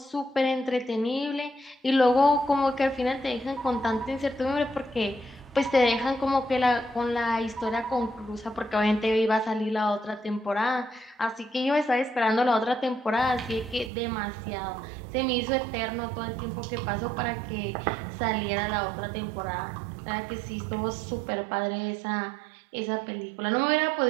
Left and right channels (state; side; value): drops out; left; at 13.9 s